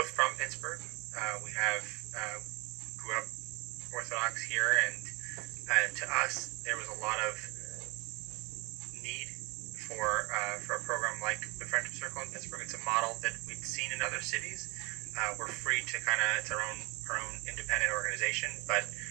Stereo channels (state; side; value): quieter; left; 25.9 dB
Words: from Pittsburgh. We grew up Orthodox here, and to us, there was a lot of need for a program like the Friendship Circle in Pittsburgh. It's a model that we'd seen in other cities. We're free to it's our own independent organization, but